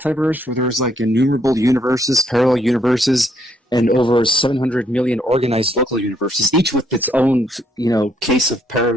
where there's like innumerable universes, parallel universes, and over 700 million organized local universes, each with its own, case of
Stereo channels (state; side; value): normal; both; correlation 0.71